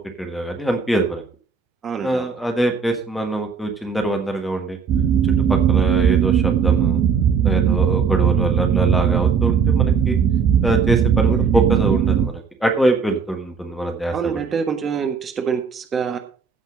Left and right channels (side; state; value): left; quieter; 5.6 dB